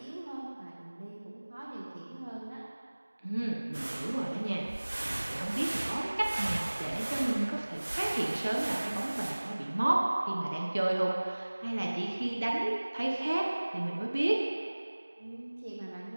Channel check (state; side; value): inverted; both; correlation -1.00